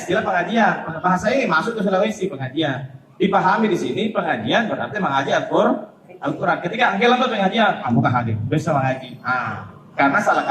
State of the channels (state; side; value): identical; both; correlation 1.00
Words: pengajian. Bahasa ini masuk ke Sulawesi pengajian. Dipahami di sini pengajian berarti mengaji Al-Quran. Ketika angkel lambat pengajian, kamu hadir. Bisa mengaji. Karena salah